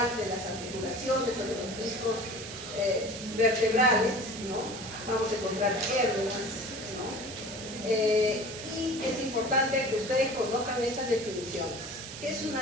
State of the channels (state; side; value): noise; right; hiss, 11 dB below the sound